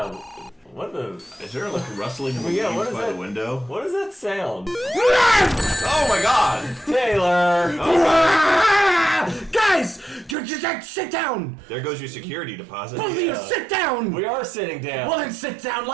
What the... Is there, rustling in the leaves by the window? What does that sound? Oh, my God. Taylor! Guys! Just sit down. There goes your security deposit. Both of you sit down. We are sitting down. Well, then sit down.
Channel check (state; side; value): drops out; left; at 10.4 s